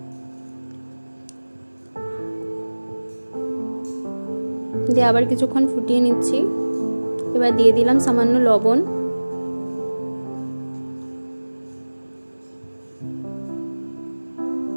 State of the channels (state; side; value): inverted; both; correlation -1.00